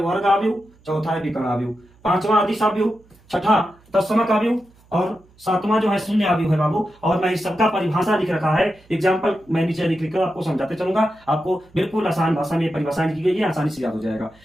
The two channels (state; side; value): noise; right; hum, 29 dB below the sound